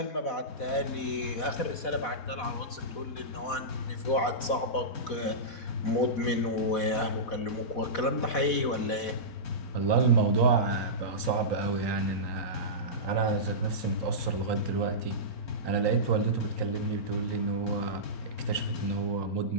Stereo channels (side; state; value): right; late; 4.1 ms